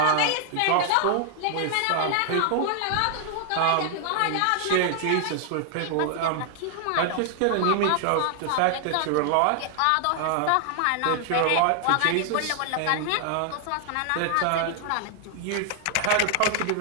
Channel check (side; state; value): both; different; correlation 0.00